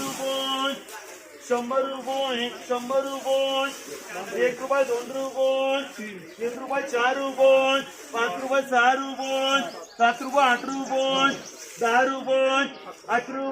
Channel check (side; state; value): both; identical; correlation 1.00